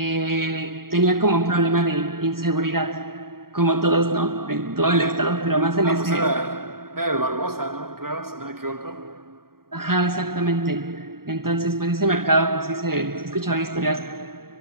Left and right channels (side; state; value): left; late; 0.93 ms